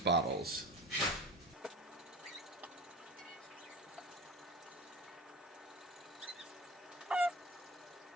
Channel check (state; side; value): normal; both; correlation 0.32